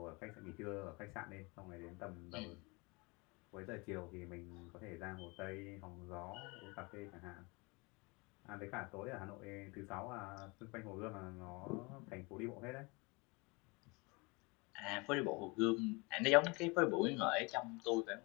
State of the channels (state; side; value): quieter; right; 27.4 dB